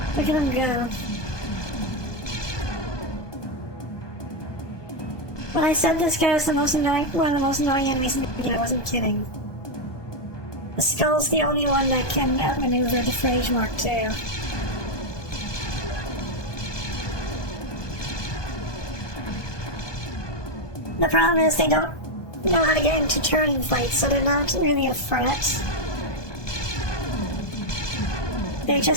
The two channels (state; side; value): late; right; 1.2 ms